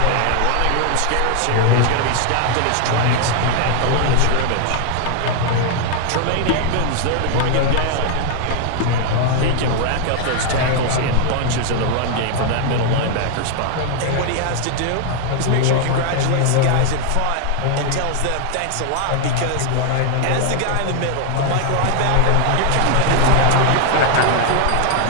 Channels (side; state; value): both; different; correlation 0.00